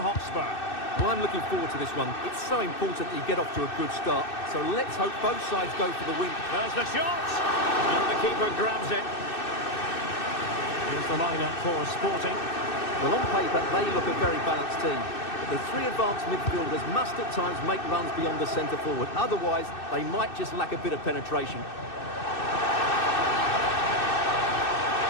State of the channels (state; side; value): late; right; 2.6 ms